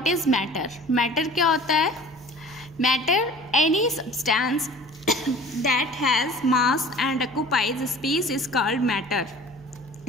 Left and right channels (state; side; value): normal; both; correlation 0.45